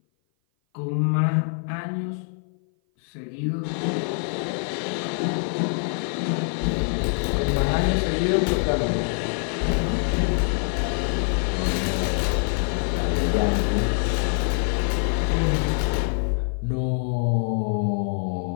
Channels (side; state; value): right; silent; 57 dB below the other